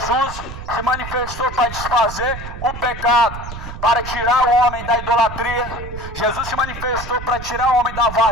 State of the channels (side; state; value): right; noise; rumble, 10 dB below the sound